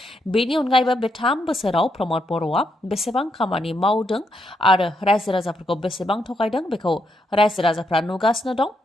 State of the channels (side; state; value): both; normal; correlation 0.79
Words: बेनि अनगायैबो बे 3 बोसोराव प्रमद बर'आ बेसेबां खामानि मावदों आरो रायजो राजाफोरखौ बेसेबां थगायदों बेखौ रायजो राजाफ्रा नुगासिनो दं